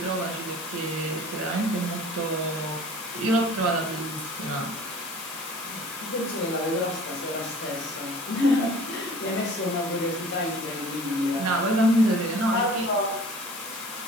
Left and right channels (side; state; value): left; noise; hiss, 11 dB below the sound